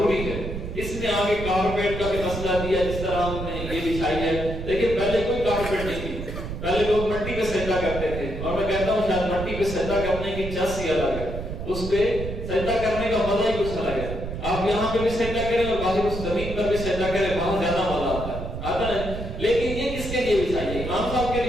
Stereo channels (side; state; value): right; noise; rumble, 6 dB below the sound